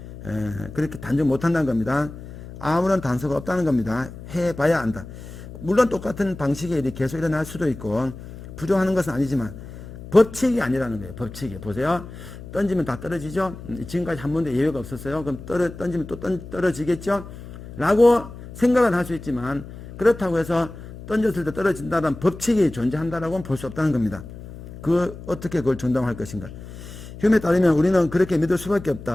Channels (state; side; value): noise; left; hum, 14 dB below the sound